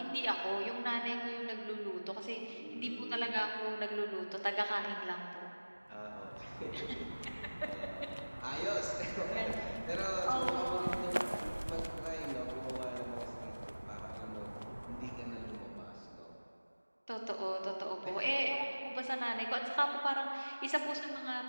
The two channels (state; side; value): inverted; both; correlation -1.00